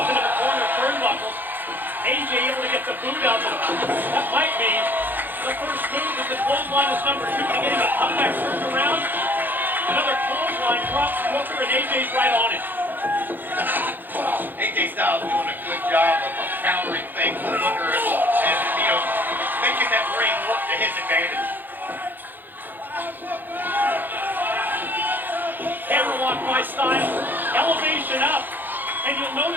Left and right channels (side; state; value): left; late; 0.089 ms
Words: into the corner turnbuckles. AJ able to get the boot out of him. That might be the first move as the clothesline is number 2 to get him a comeback turned around. Another clothesline drops Booker and AJ's right on it. AJ Styles doing a good job of countering things with Booker and making that ring work to his advantage. Hammerlock by Styles. Elevation up. And you'll